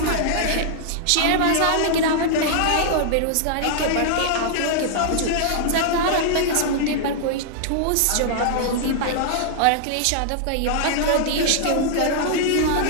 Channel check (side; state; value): both; different; correlation -0.01